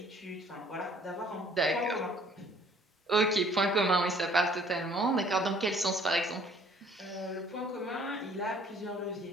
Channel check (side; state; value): both; normal; correlation 0.57